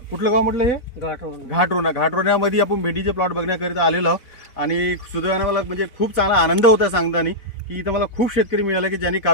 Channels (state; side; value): late; right; 4.1 ms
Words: कुठलं गाव म्हटलं हे घाटरोण्यामध्ये आपण भेंडीचे प्लॉट बघण्याकरिता आलेलो आहोत आणि सुदैवाने मला म्हणजे खूप चांगला आनंद होता सांगताना की इथं मला खूप शेतकरी मिळाले की ज्यांनी